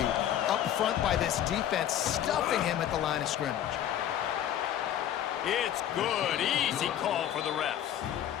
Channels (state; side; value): quieter; right; 10.9 dB